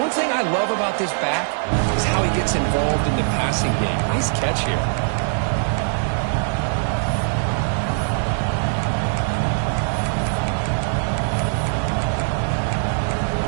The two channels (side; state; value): left; silent; 63 dB below the other